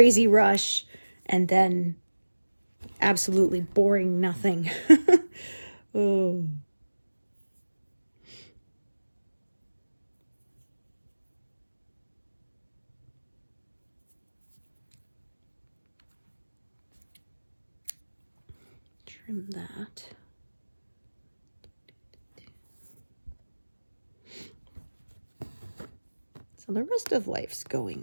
rush and then absolutely boring nothing. Oh. Trim that. So the rest of life's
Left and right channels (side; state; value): both; inverted; correlation -1.00